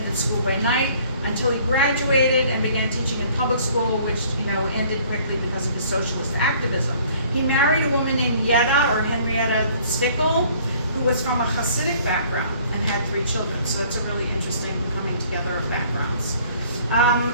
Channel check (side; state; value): both; inverted; correlation -0.56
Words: school by night, until he graduated and began teaching in public school, which ended quickly because of his socialist activism. He married a woman named Yetta, or Henrietta Stickel, who was from a Hasidic background and had 3 children. So it's a really interesting coming together of backgrounds.